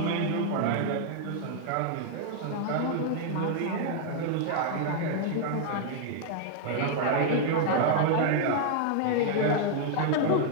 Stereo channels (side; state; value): both; different; correlation 0.00